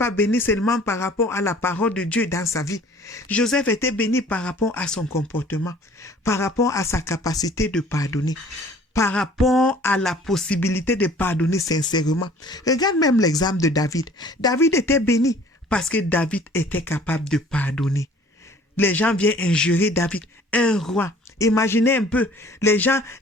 béni seulement par rapport à la parole de Dieu dans sa vie. Joseph était béni par rapport à son comportement, par rapport à sa capacité de pardonner, par rapport à la possibilité de pardonner sincèrement. Regarde même l'exemple de David. David était béni parce que David était capable de pardonner. Les gens viennent injurer David, un roi. Imaginez un peu, les gens,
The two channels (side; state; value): both; normal; correlation 0.52